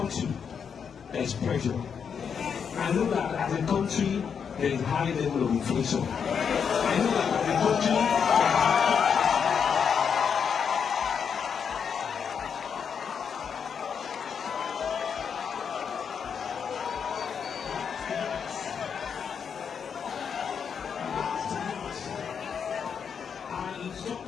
there is pressure. I know that as a country there is high level of inflation. I know that as a country I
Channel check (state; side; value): quieter; right; 6.9 dB